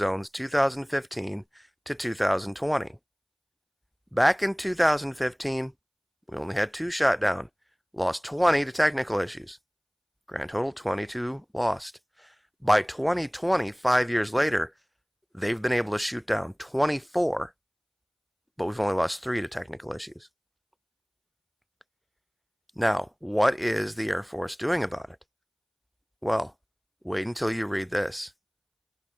2015 to 2020. Back in 2015, we only had 2 shot down, lost 20 to technical issues. Grand total 22 lost. By 2020, 5 years later, they've been able to shoot down 24, but we've only lost 3 to technical issues. Now, what is the Air Force doing about it? Well, wait until you read this.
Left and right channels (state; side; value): identical; both; correlation 1.00